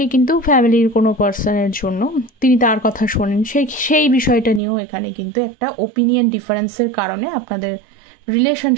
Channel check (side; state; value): left; drops out; at 4.6 s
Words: কিন্তু ফ্যামিলির কোনো পার্সনের জন্য তিনি তার কথা শোনেন, সেই বিষয়টা নিয়েও এখানে কিন্তু একটা ওপিনিয়ন ডিফারেন্সের কারণে আপনাদের